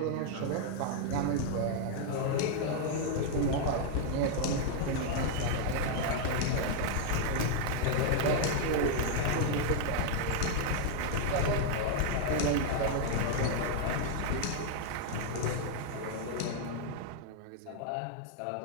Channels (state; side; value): different; both; correlation 0.00